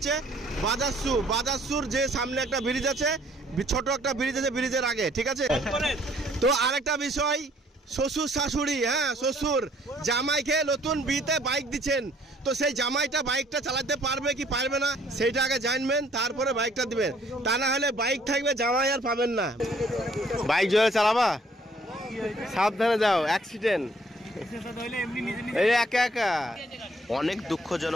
বাজারসুর যে সামনে একটা ব্রিজ আছে, ছোট একটা ব্রিজ আছে, ব্রিজের আগে, ঠিক আছে? তো আরেকটা বিষয়, শ্বশুর শাশুড়ি, হ্যাঁ শ্বশুর জামাইকে নতুন বিয়েতে বাইক দিচ্ছেন, তো সেই জামাইটা বাইকটা চালাতে পারবে কি পারবে না সেইটা আগে জানবেন, তারপরে বাইকটা দিবেন। তা না হলে বাইক থাকবে, জামাই আর পাবেন না। বাইক জোরে চালাবা, সাবধানে যাও, অ্যাক্সিডেন্ট এই একা একা। অনেক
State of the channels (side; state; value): both; normal; correlation 0.61